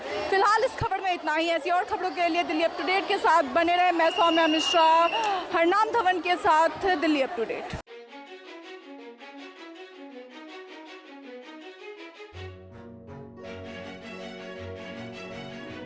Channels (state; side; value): identical; both; correlation 1.00